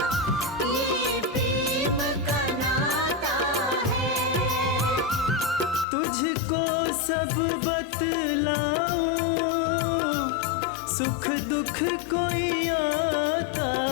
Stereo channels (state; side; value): drops out; right; at 5.9 s